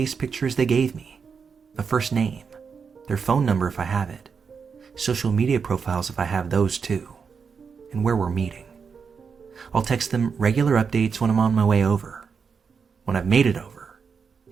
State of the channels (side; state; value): left; quieter; 5.9 dB